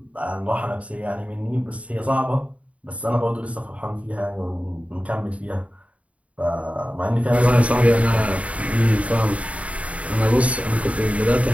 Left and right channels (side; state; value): left; late; 0.066 ms